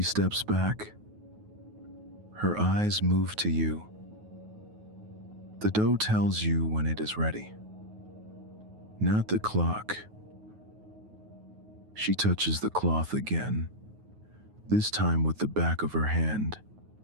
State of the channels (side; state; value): left; late; 9.4 ms